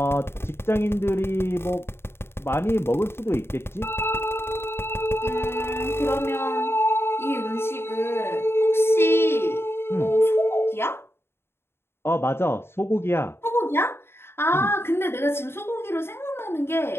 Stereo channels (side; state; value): right; late; 0.12 ms